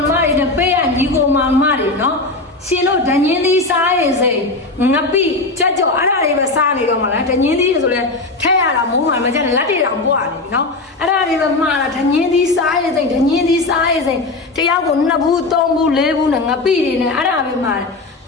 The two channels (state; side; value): quieter; right; 3.3 dB